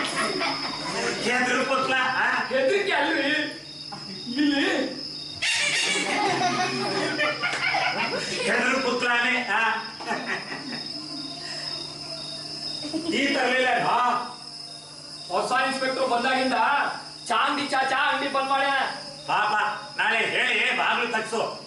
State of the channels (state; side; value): identical; both; correlation 1.00